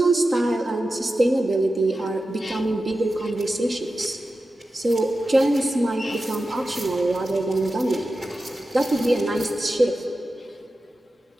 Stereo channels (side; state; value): both; normal; correlation 0.92